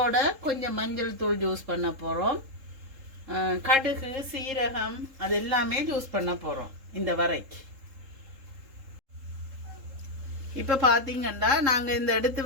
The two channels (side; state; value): left; late; 3.7 ms